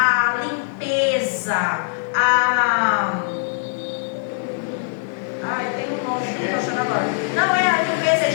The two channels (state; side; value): silent; right; 65 dB below the other